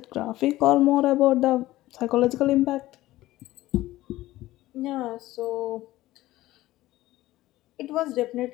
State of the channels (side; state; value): right; quieter; 16.5 dB